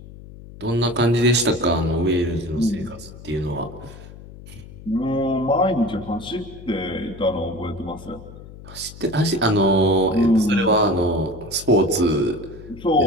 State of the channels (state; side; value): noise; left; hum, 17 dB below the sound